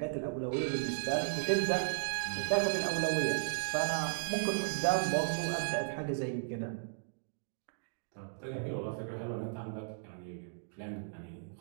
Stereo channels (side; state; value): left; silent; digital silence